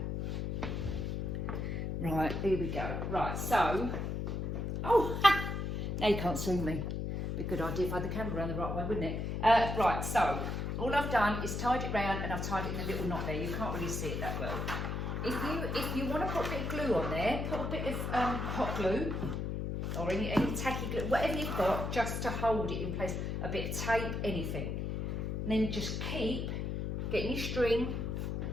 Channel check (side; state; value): left; noise; hum, 2 dB below the sound